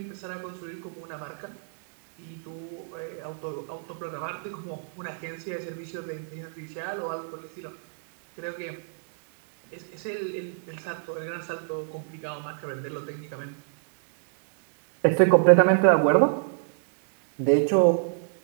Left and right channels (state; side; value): silent; left; digital silence